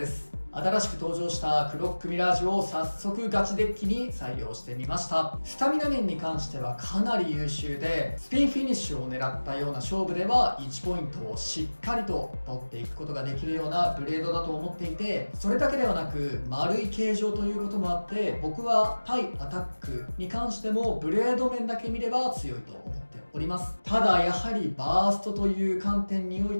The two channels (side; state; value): both; inverted; correlation -1.00